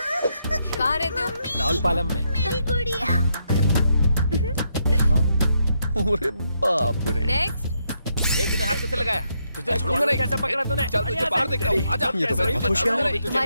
कहाँ रहते हो? राउलपालम में। अरे बाप रे, नेक्स्ट, तूने हाथ कैसे लगाया? तुझे छोड़ूंगा नहीं। कैसे पकड़ा तूने? चल तुझे बाहर देखता हूँ। आजा। ये तो बहुत होशियार है।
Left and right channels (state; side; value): inverted; both; correlation -0.78